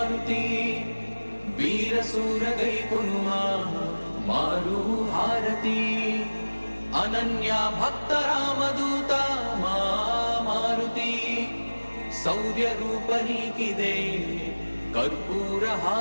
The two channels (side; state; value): both; inverted; correlation -1.00